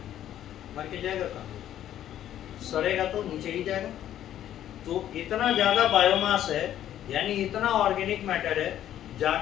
मर के जाएगा कहाँ? सड़ेगा तो नीचे ही जाएगा। तो इतना ज़्यादा बायोमास है, यानी इतना ऑर्गेनिक मैटर है,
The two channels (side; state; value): right; quieter; 11.5 dB